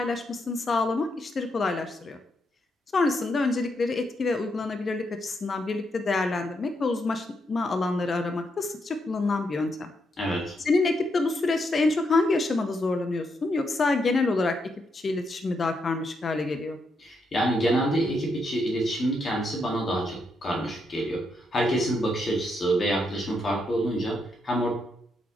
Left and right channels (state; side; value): normal; both; correlation 0.80